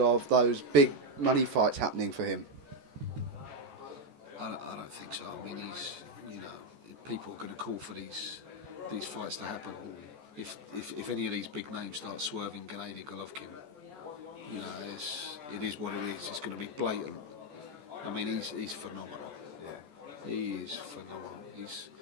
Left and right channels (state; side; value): late; left; 14 ms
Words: those big money fights happening for him? I don't think so. He's, people are going to call for these fights to happen. If any of these big names start swerving Gennady Golovkin, it is what it is. It's going to be blatant. He's phenomenal. He is phenomenal.